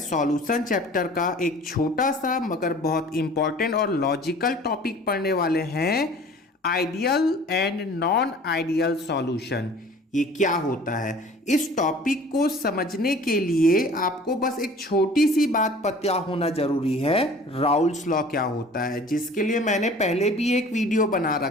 चैप्टर का एक छोटा सा मगर बहुत इम्पोर्टेंट और लॉजिकल टॉपिक पढ़ने वाले हैं। Ideal and non ideal solution, ये क्या होता है। इस टॉपिक को समझने के लिए आपको बस एक छोटी सी बात पता होना जरूरी है, राउल्स लॉ क्या होता है, जिसके लिए मैंने पहले भी एक वीडियो बना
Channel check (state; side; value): normal; both; correlation 0.46